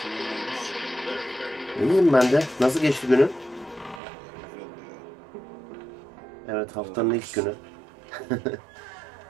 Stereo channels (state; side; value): drops out; left; at 4.0 s